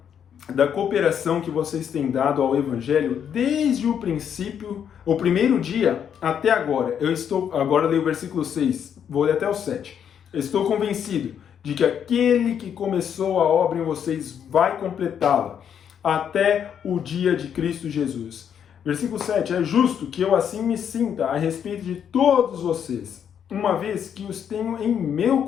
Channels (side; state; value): right; quieter; 8.4 dB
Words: da cooperação que vocês têm dado ao Evangelho desde o princípio, o primeiro dia até agora. Agora leio o versículo 6, vou ler até o 7. Estou convencido de que aquele que começou a obra em vocês vai completá-la até o dia de Cristo Jesus. Versículo 7, é justo que eu assim me sinta a respeito de todos vocês, uma vez que os tenho em meu